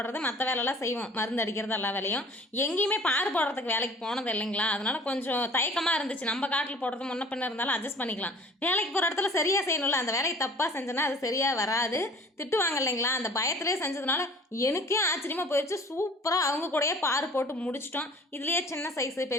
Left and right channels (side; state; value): both; normal; correlation 0.48